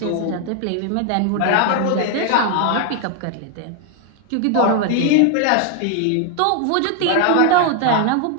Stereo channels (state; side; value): different; both; correlation 0.00